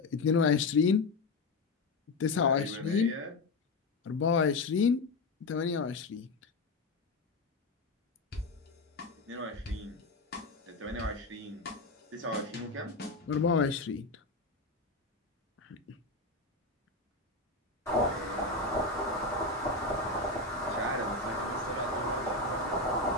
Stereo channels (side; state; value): right; quieter; 3.4 dB